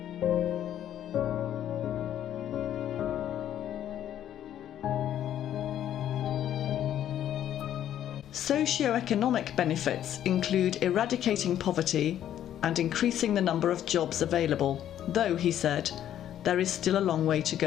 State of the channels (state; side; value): quieter; right; 11.0 dB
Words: Socio-economic benefits include eradicating poverty and increasing the number of jobs available, though, he said, there is still a long way to